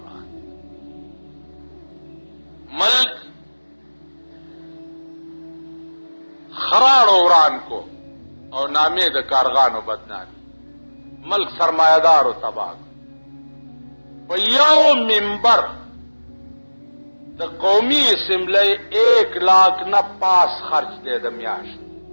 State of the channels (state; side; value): inverted; both; correlation -1.00